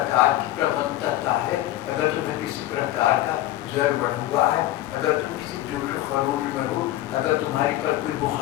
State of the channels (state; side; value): quieter; right; 15.0 dB